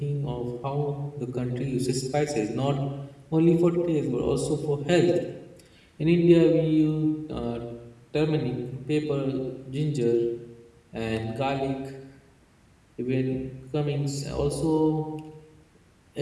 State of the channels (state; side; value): identical; both; correlation 1.00